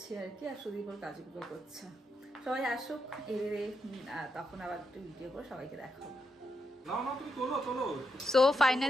আর কি। আর সুদীপ ওর কাজগুলো করছে। সবাই আসুক, তখন আবার একটু ভিডিও করে সবাইকে দেখাবো। সো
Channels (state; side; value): normal; both; correlation 0.83